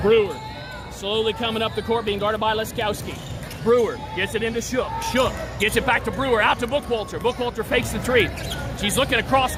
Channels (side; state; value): both; identical; correlation 1.00